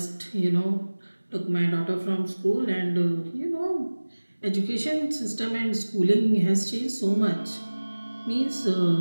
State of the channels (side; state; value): both; inverted; correlation -1.00